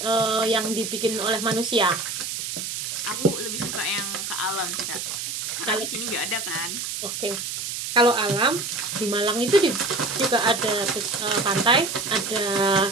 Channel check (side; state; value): right; noise; hiss, 4 dB below the sound